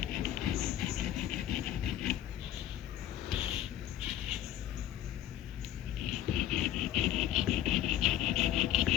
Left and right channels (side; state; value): right; quieter; 11.9 dB